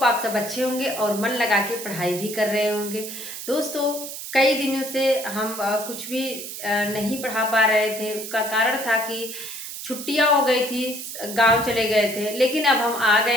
आप सब अच्छे होंगे और मन लगा के पढ़ाई भी कर रहे होंगे। दोस्तों, कई दिनों से हम कुछ भी नहीं पढ़ा पा रहे थे। उसका कारण था कि छुट्टियाँ हो गई थी, गाँव चले गए थे। लेकिन अब हम आ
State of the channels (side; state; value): right; noise; hiss, 9 dB below the sound